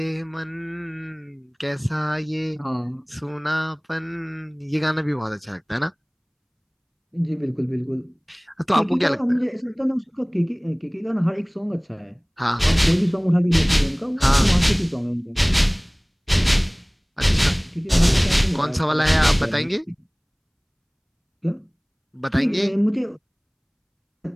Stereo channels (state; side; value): identical; both; correlation 1.00